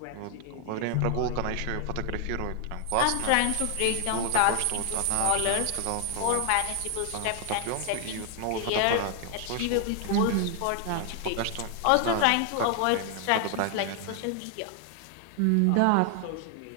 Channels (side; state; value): both; different; correlation 0.00